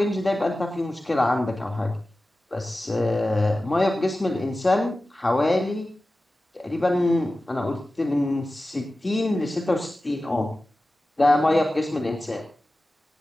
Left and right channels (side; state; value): both; normal; correlation 0.95